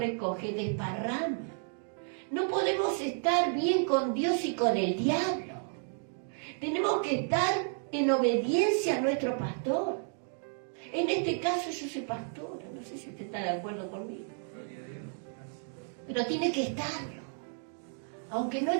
desparrama. No podemos estar bien con Dios y con el diablo. Tenemos que estar en obediencia a nuestro pastor. En este caso yo soy pastora, no sé si usted está de acuerdo conmigo. Pero tiene que estarlo, aunque no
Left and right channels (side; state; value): left; silent; 56 dB below the other